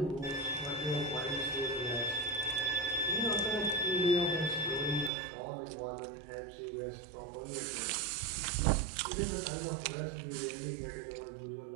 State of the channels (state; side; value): drops out; left; at 5.1 s